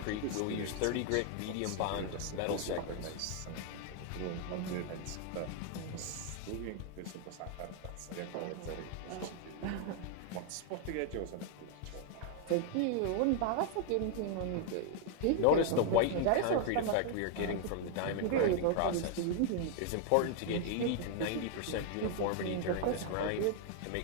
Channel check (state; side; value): different; both; correlation 0.00